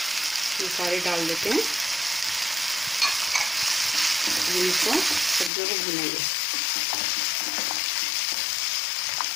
ये सारे डाल देते हैं। इनको सब्जियों को भूनेंगे।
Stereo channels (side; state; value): right; drops out; at 5.5 s